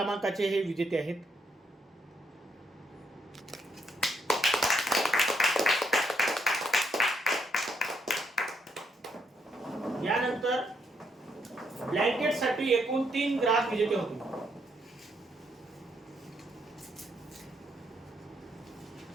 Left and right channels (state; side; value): normal; both; correlation 0.75